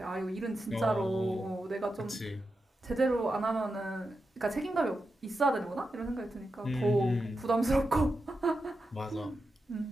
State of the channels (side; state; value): both; normal; correlation 0.89